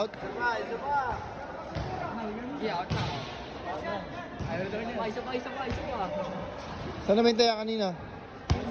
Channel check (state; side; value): identical; both; correlation 1.00